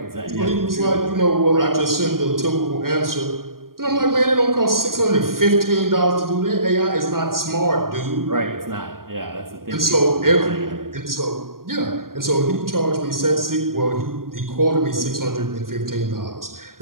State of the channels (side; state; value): left; late; 0.91 ms